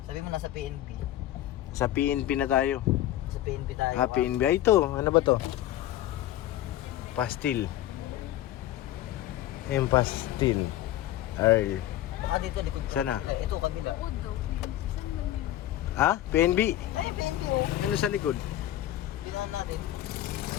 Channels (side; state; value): right; quieter; 13.6 dB